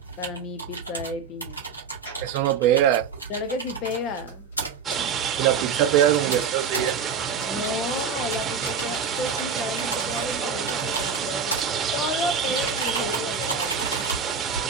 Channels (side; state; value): left; quieter; 6.1 dB